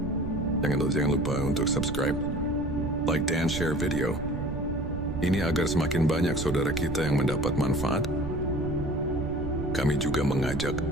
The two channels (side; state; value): right; noise; rumble, 6 dB below the sound